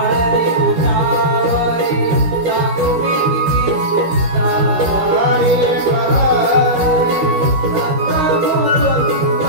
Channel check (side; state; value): left; late; 13 ms